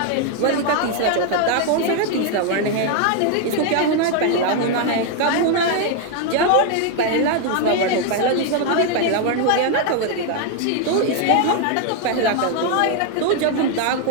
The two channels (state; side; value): different; both; correlation 0.01